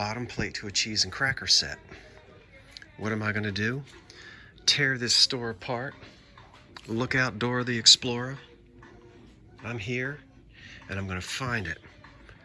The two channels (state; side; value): identical; both; correlation 1.00